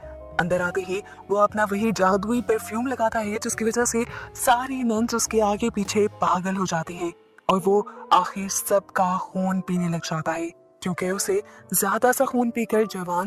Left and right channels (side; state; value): both; identical; correlation 1.00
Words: अंदर आते ही वो अपना वही जादुई परफ्यूम लगाता है, जिसकी वजह से सारी नन्स उसके आगे पीछे पागल हो जाती है और वो आखिर सबका खून पीने लग जाता है, क्योंकि उसे ज्यादा सा खून पीकर